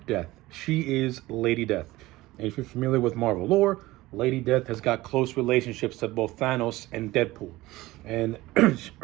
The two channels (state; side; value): quieter; left; 18.6 dB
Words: death. She is Lady Death. And if you're familiar with Marvel lore, Lady Death has got close relationships to both Thanos and Deadpool. And